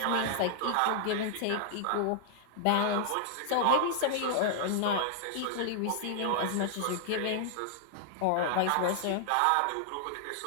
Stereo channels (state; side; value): different; both; correlation 0.00